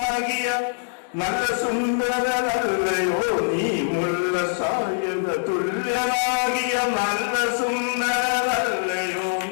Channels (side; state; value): right; silent; digital silence